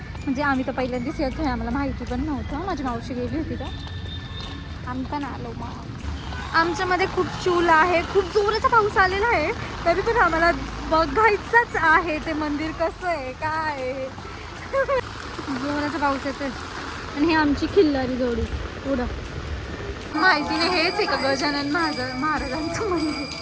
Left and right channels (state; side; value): identical; both; correlation 1.00